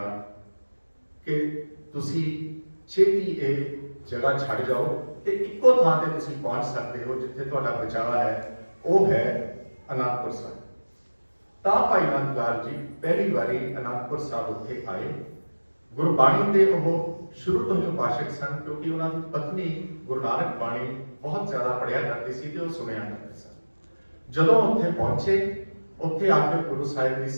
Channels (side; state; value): both; inverted; correlation -1.00